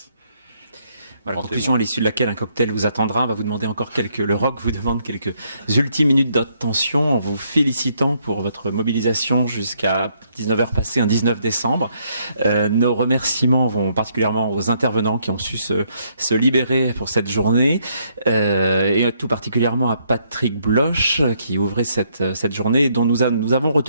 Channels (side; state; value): both; inverted; correlation -0.72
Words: Voilà, conclusion à l'issue de laquelle un cocktail vous attendra. On va vous demander encore le rock vous demande quelques ultimes minutes d'attention en vous félicitant pour votre mobilisation jusqu'à 19h passé un 19 décembre. Nos remerciements vont particulièrement aux intervenants qui ont su se libérer pour cette journée et tout particulièrement à Patrick Bloch qui ouvrait cette journée dont nous avons